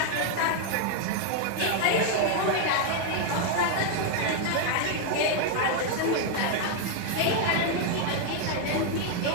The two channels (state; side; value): different; both; correlation 0.00